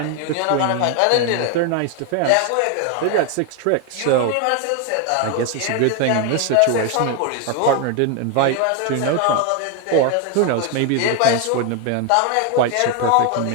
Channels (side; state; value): both; different; correlation 0.01